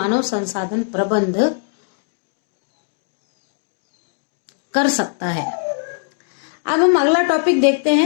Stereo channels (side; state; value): right; silent; digital silence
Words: संसाधन प्रबंध कर सकता है। अब हम अगला टॉपिक देखते